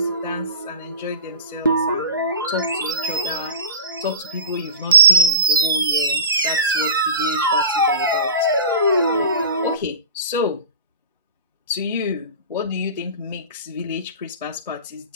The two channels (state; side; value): inverted; both; correlation -0.36